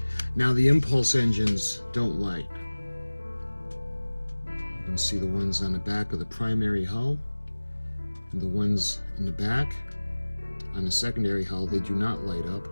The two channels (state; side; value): inverted; both; correlation -1.00